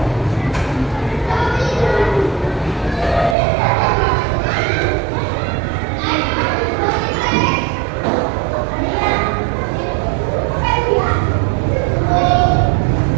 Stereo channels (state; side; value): drops out; left; at 3.4 s